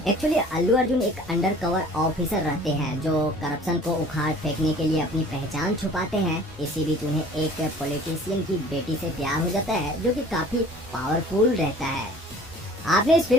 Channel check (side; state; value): both; normal; correlation 0.48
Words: एक्चुअली अल्लू अर्जुन एक अंडरकवर ऑफिसर रहते हैं जो करप्शन को उखाड़ फेंकने के लिए अपनी पहचान छुपाते हैं। इसी बीच उन्हें एक पॉलिटिशियन की बेटी से प्यार हो जाता है जो कि काफी पावरफुल रहता है। आपने इस